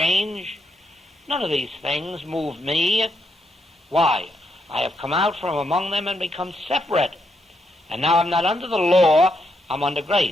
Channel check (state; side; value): normal; both; correlation 0.79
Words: None of these things move me. Why? I have come out from among them and become separate. And now I'm not under the law, I'm under